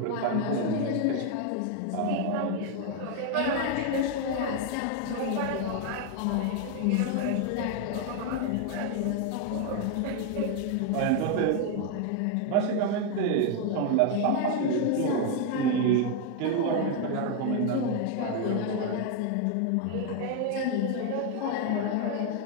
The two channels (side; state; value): both; different; correlation 0.01